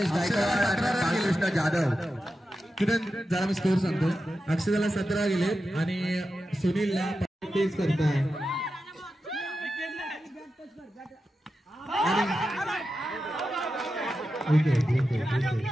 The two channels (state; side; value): normal; both; correlation 0.90